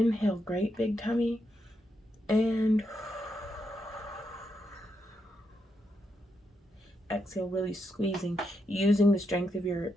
great big tummy. And exhale, really squeezing, using the strength of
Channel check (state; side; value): normal; both; correlation 0.82